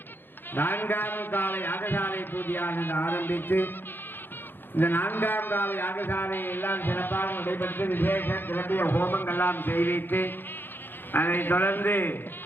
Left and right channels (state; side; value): late; right; 0.098 ms